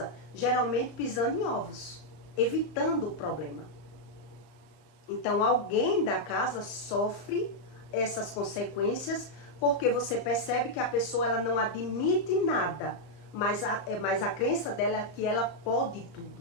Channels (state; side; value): late; right; 35 ms